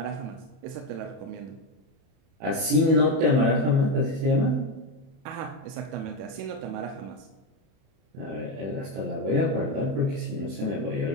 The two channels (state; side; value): late; left; 31 ms